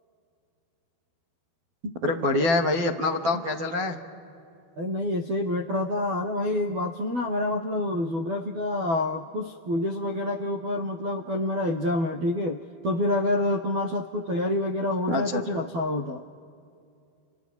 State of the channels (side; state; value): left; late; 12 ms